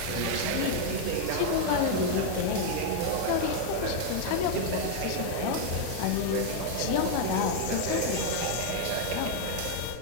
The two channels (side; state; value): both; different; correlation 0.00